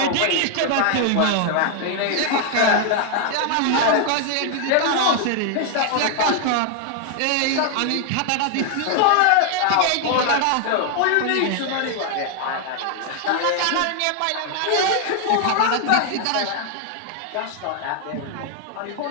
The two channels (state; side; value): different; both; correlation 0.00